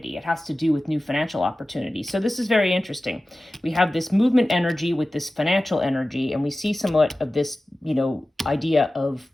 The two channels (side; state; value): both; normal; correlation 0.96